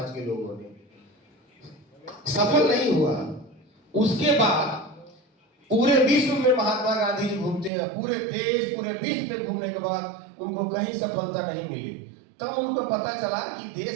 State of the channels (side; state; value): left; drops out; at 7.7 s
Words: के लोगों ने। सफल नहीं हुआ। उसके बाद पूरे विश्व में महात्मा गांधी जी घूमते हैं, पूरे देश पूरे विश्व में घूमने के बाद उनको कहीं सफलता नहीं मिली। तब उनको पता चला कि